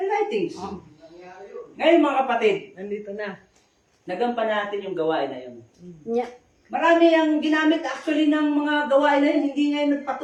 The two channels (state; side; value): identical; both; correlation 1.00